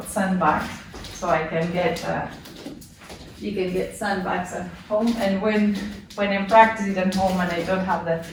sandbags, so I can get. You can get sandbags at home, and when I'm practicing at home and I don't have the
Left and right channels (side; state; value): both; identical; correlation 1.00